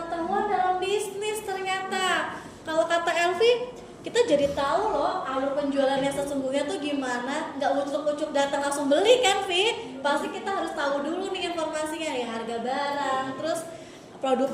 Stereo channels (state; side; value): identical; both; correlation 1.00